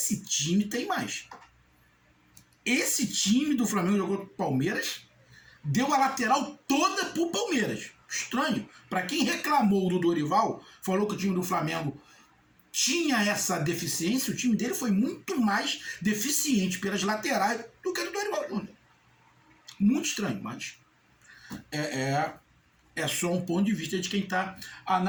time tem mais. Esse time do Flamengo jogou com o Palmeiras, deu a lateral toda pro Palmeiras. Estranho. Para quem reclamou do Dorival, falou que o time do Flamengo tinha essa deficiência, o time dele foi muito mais deficiente pelas laterais do que o do Dorival Júnior. Muito estranho, mas é só um ponto de vista de quem está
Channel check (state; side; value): identical; both; correlation 1.00